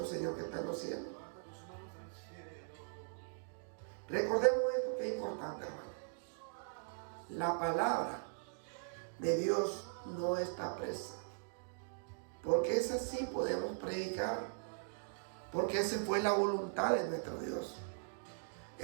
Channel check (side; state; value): left; silent; digital silence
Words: Señor que está en los cielos. Recordemos esto que es importante, hermano. La palabra de Dios no está presa, porque esa sí podemos predicar, porque esa fue la voluntad de nuestro Dios.